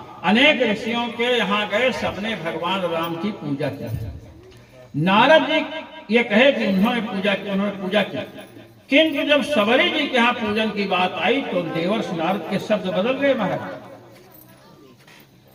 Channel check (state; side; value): identical; both; correlation 1.00